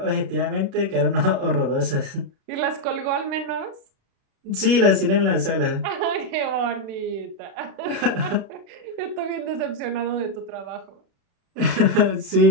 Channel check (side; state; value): left; late; 36 ms